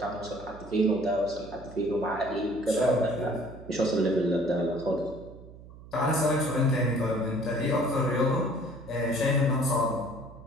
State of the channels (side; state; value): right; noise; hum, 18 dB below the sound